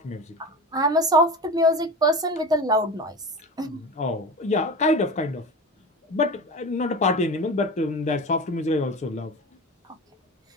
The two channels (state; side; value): normal; both; correlation 0.29